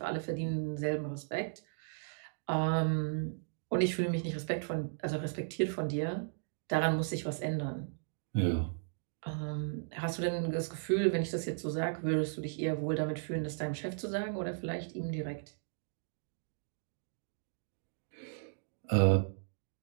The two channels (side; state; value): left; silent; digital silence